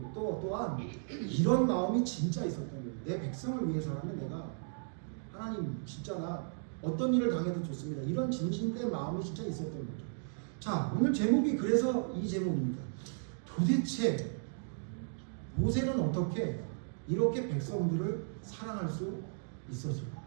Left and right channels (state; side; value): silent; left; digital silence